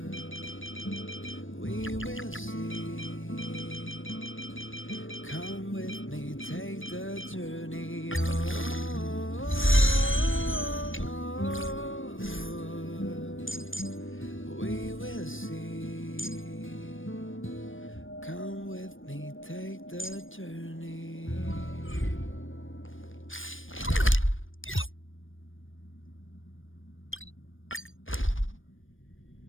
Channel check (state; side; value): late; right; 0.58 ms